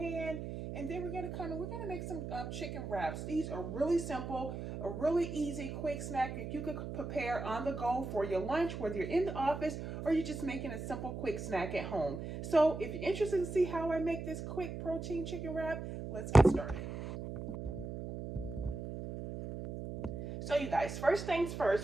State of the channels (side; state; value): right; noise; hum, 6 dB below the sound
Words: and then we're gonna make some chicken wraps. These are really simple, a really easy quick snack that you could prepare on the go for your lunch, whether you're in the office or you're just making a simple quick snack at home. So if you're interested to see how I make this quick protein chicken wrap, let's get started. So you guys, first things